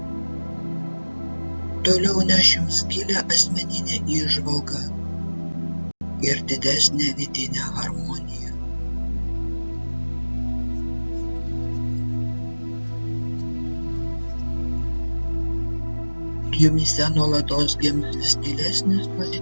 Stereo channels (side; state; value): both; inverted; correlation -1.00